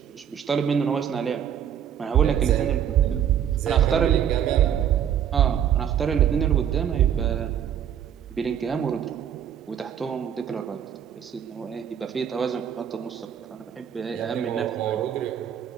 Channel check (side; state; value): left; quieter; 9.2 dB